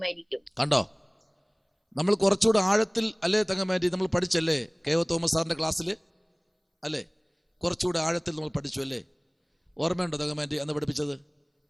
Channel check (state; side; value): identical; both; correlation 1.00